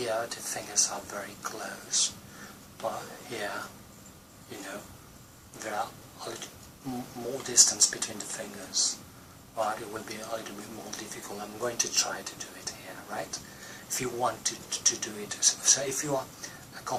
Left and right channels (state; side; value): identical; both; correlation 1.00